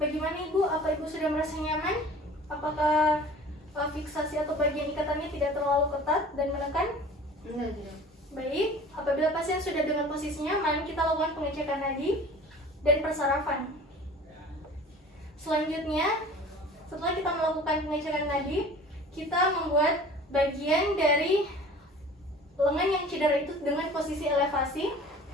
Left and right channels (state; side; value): normal; both; correlation 0.44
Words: Ibu? Apa Ibu sudah merasa nyaman? Apakah fiksasi atau bagian ikatannya tidak terlalu ketat dan menekan? Tidak. Baik, apabila pasien sudah dengan posisinya, mari kita lakukan pengecekan nadi dan persarafan. Selanjutnya, setelah kita melakukan pengecekan nadi, kita membuat bagian dari lengan yang cedera itu dengan posisi elevasi.